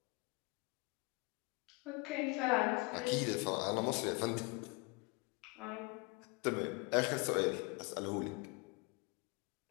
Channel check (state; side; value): quieter; right; 29.0 dB